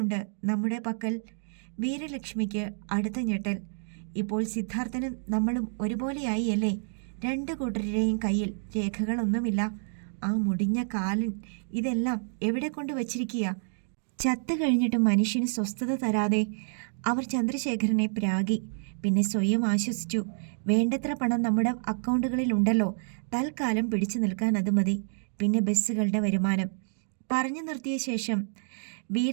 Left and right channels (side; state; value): left; silent; digital silence